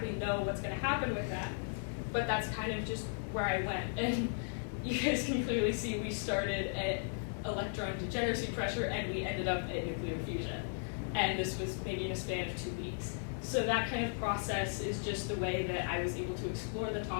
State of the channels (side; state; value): right; silent; digital silence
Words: know what's going to happen with that. but that's kind of just where I went. And you guys can clearly see we started at electron degeneracy pressure and we ended up at nuclear fusion. And this was maybe in a span of 2 weeks. So that kind of process is just the way that I was able to explore the